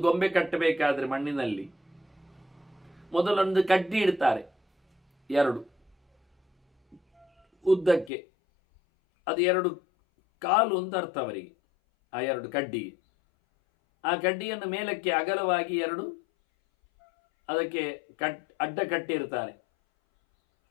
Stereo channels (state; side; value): drops out; right; at 8.1 s